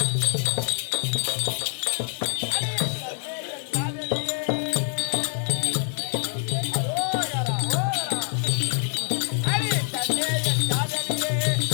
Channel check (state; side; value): silent; right; digital silence